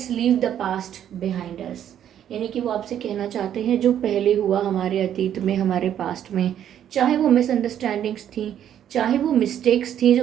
leave the past behind us, यानी कि वो आपसे कहना चाहते हैं जो पहले हुआ हमारे अतीत में, हमारे पास्ट में, चाहे वो मिसअंडरस्टैंडिंग्स थी, चाहे वो मिस्टेक्स थी जो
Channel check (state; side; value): quieter; left; 10.2 dB